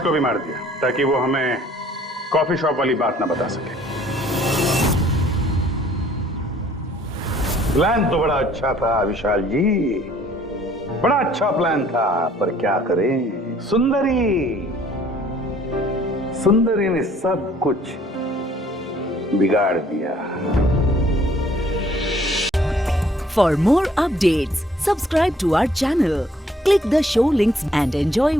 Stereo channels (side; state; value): both; normal; correlation 0.59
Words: को भी मार दिया ताकि वो हमें कॉफी शॉप वाली बात ना बता सके। प्लान तो बड़ा अच्छा था विशाल जी, बड़ा अच्छा प्लान था, पर क्या करें, सुंदरी ने सब कुछ बिगाड़ दिया। For more updates, subscribe to our channel, click the show links and enjoy